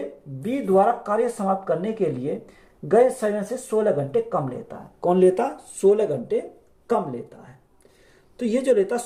बी द्वारा कार्य समाप्त करने के लिए गए समय से 16 घंटे कम लेता है। कौन लेता? 16 घंटे कम लेता है। तो ये जो लेता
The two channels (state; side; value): identical; both; correlation 1.00